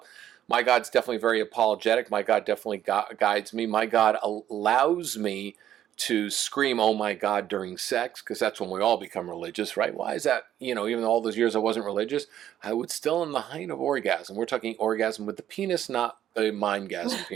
God's definitely very apologetic. My God definitely guides me. My God allows me to scream, "Oh my God," during sex, because that's when we all become religious, right? Why is that? Even all those years I wasn't religious, I would still in the height of orgasm. We're talking orgasm with the penis, not a mindgasm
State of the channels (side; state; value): left; quieter; 11.3 dB